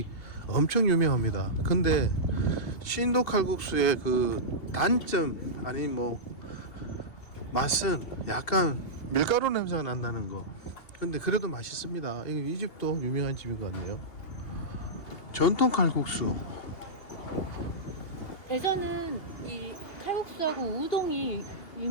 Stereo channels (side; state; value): right; late; 2.8 ms